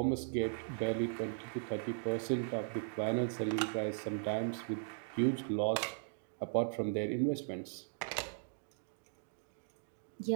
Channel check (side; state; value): left; silent; digital silence